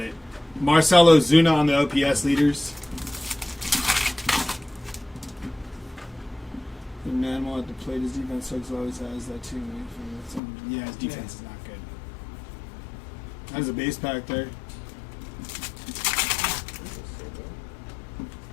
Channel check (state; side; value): drops out; right; at 10.4 s